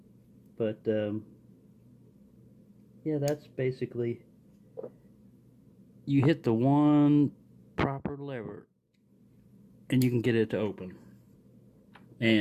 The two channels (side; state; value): both; identical; correlation 1.00